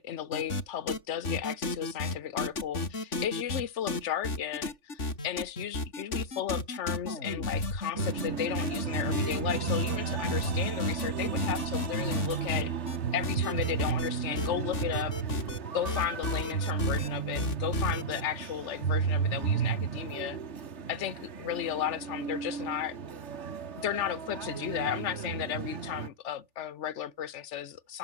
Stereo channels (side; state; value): right; late; 3.4 ms